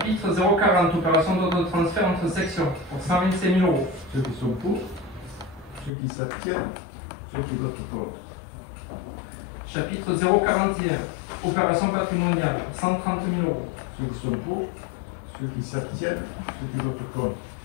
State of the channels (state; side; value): drops out; right; at 5.9 s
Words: 040, opération d'ordre de transfert entre sections pour 125 000 euros. Ceux qui sont pour, ceux qui s'abstiennent, ceux qui votent contre. Chapitre 041, opération patrimoniale, 130 000 euros. Ceux qui sont pour, ceux qui s'abstiennent, ceux qui votent contre.